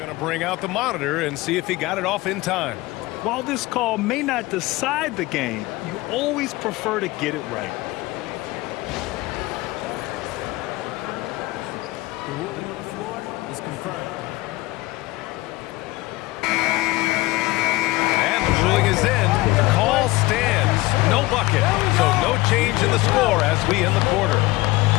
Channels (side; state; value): right; quieter; 20.1 dB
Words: Bring out the monitor and see if he got it off in time. While this call may not decide the game, you always prefer to get it right. The ruling on the floor is confirmed. And the ruling is in. The call stands. No bucket. So no change in the score as we end the quarter.